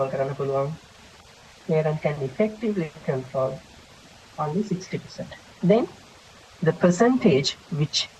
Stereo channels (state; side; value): identical; both; correlation 1.00